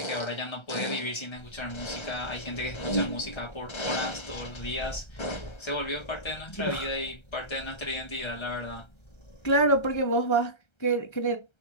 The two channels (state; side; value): late; right; 1.3 ms